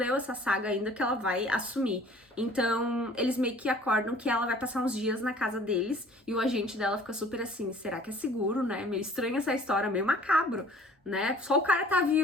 essa saga ainda que ela vai assumir. Então, eles meio que acordam que ela vai passar uns dias na casa deles e o agente dela fica super assim, será que é seguro, né? Meio estranha essa história, meio macabro, né? Só o cara tá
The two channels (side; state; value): both; normal; correlation 0.51